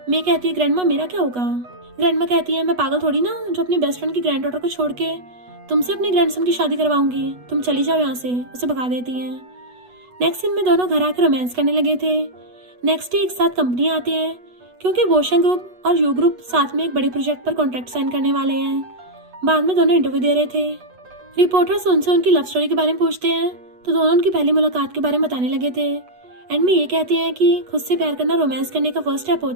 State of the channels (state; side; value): late; left; 8.2 ms